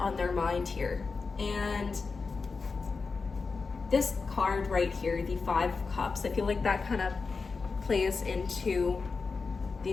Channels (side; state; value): right; quieter; 4.5 dB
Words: their mind here. And this card right here, the 5 of Cups, I feel like that kind of plays into the